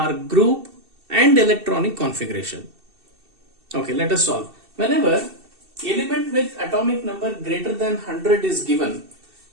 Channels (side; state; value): left; late; 2.7 ms